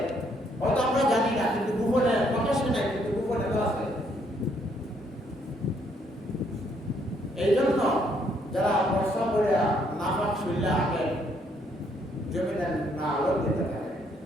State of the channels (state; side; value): normal; both; correlation 0.70